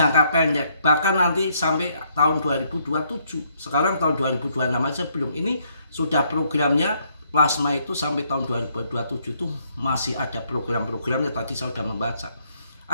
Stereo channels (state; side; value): inverted; both; correlation -0.70